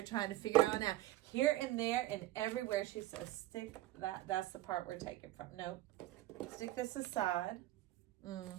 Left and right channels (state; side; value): quieter; left; 15.6 dB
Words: trying to figure out now. Here and there and everywhere. She says, stick that. That's the part we're taking from. Nope. Stick this aside.